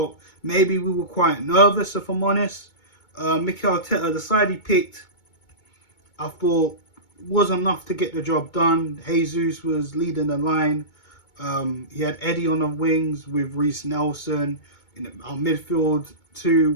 maybe we were quite nervous, if I'm honest. Mikel Arteta, the side he picked, I thought wasn't enough to get the job done. Jesus was leading the line. He had Eddie on the wings with Reece Nelson. In our midfield, three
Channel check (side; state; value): right; late; 2.2 ms